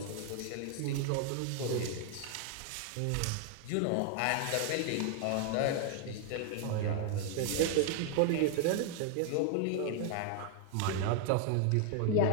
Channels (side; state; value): both; different; correlation 0.00